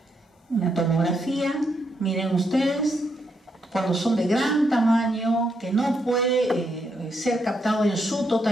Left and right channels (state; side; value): normal; both; correlation 0.78